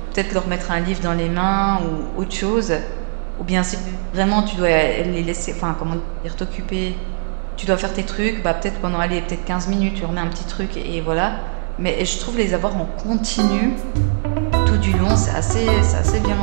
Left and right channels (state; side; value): silent; left; digital silence